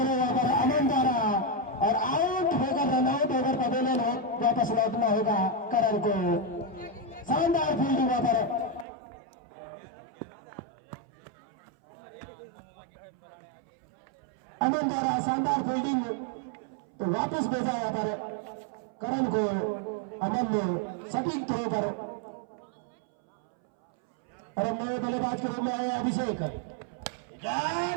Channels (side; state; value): left; drops out; at 8.8 s